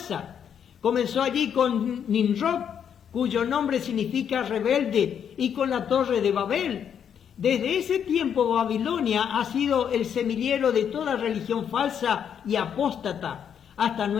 Comenzó allí con Nimrod, cuyo nombre significa rebelde, y con la torre de Babel. Desde ese tiempo Babilonia ha sido el semillero de toda religión falsa y apóstata hasta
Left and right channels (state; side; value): quieter; right; 8.3 dB